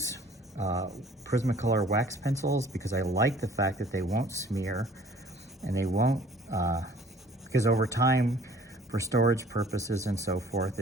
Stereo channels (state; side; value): normal; both; correlation 0.53